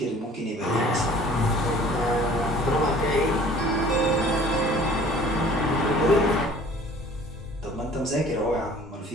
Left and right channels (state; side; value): normal; both; correlation 0.50